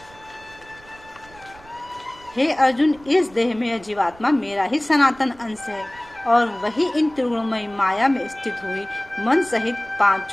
हे अर्जुन, इस देह में यह जीवात्मा मेरा ही सनातन अंश है और वही इन त्रिगुणमयी माया में स्थित हुई मन सहित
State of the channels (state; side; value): noise; right; rumble, 24 dB below the sound